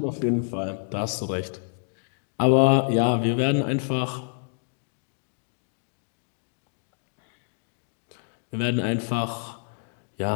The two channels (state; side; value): silent; right; digital silence